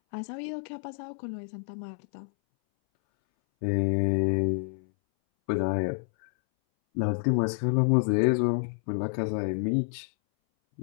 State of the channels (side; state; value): right; silent; 59 dB below the other